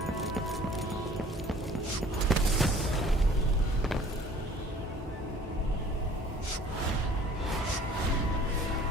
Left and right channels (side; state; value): both; normal; correlation 0.52